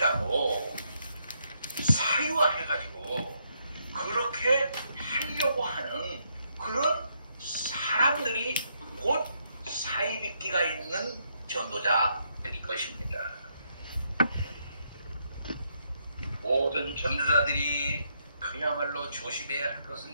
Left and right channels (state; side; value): inverted; both; correlation -0.76